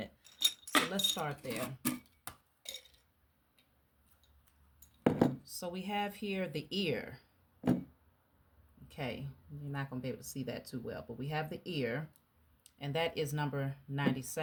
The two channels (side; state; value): both; identical; correlation 1.00